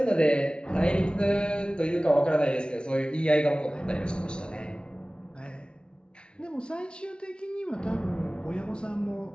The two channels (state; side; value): late; right; 0.056 ms